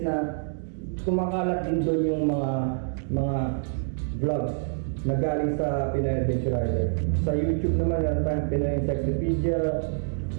na kumakalat din doon yung mga vlogs na galing sa Pinoy Adventure Rider. Sa YouTube naman, meron tayong Pinoy Encyclopedia,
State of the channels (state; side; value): silent; left; digital silence